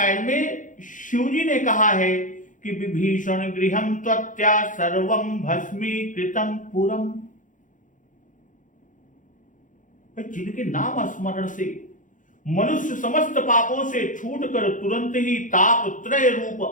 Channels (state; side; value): late; right; 0.38 ms